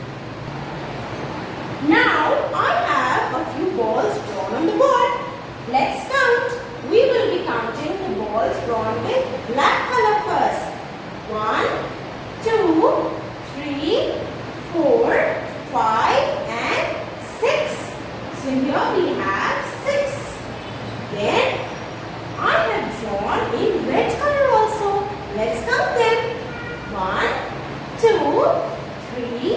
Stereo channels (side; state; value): both; identical; correlation 1.00